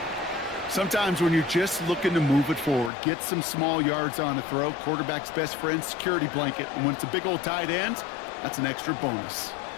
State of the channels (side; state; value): right; drops out; at 2.9 s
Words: Sometimes when you're just looking to move it forward, get some small yards on a throw, quarterback's best friend, security blanket. And when it's a big old tight end, that's an extra bonus.